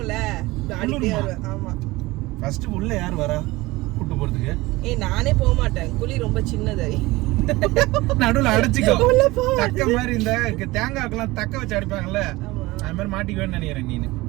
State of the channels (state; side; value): quieter; left; 20.4 dB